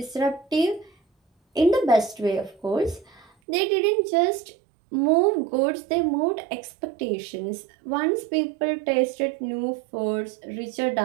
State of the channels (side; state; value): left; drops out; at 3.2 s